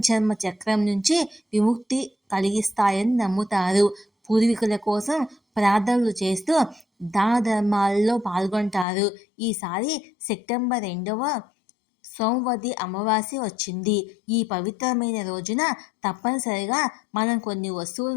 చక్రం నుంచి విముక్తి కలిగిస్తాయని నమ్ముతారు. పూర్వీకుల కోసం ప్రార్థనలు చేస్తూ దాన ధర్మాల్లో పాల్గొంటారు. ఈసారి సెప్టెంబర్ 2వ సోమవతి అమావాస్య వచ్చింది. ఈ పవిత్రమైన రోజున తప్పనిసరిగా మనం కొన్ని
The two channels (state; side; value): drops out; right; at 8.8 s